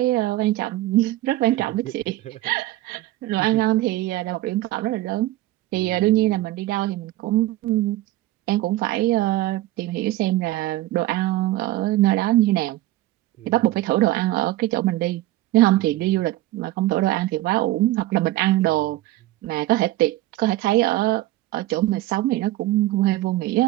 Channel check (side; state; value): left; quieter; 16.3 dB